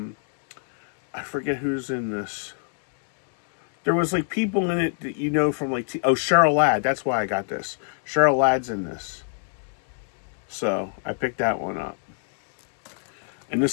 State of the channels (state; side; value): silent; right; digital silence